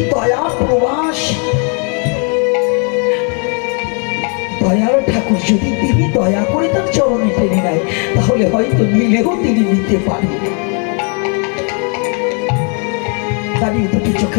দয়া প্রবাস দয়ার ঠাকুর যদি তিনি দয়া করে তার চরণে টেনে নেয়, তাহলে হয়তো নিলেও তিনি নিতে পারেন। দাঁড়িয়ে দুটি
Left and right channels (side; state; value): right; quieter; 39.0 dB